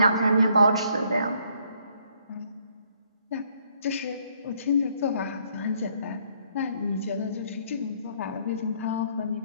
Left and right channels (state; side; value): inverted; both; correlation -0.67